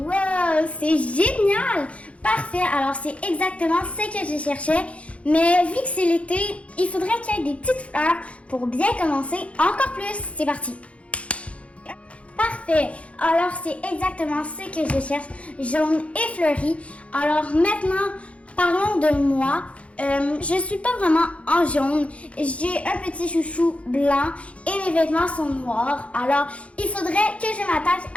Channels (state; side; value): late; right; 0.063 ms